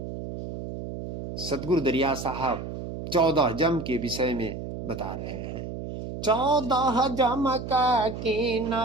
सतगुरु दरिया साहब 14 जम के विषय में बता रहे हैं। 14 जम का कीन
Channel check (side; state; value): right; noise; hum, 8 dB below the sound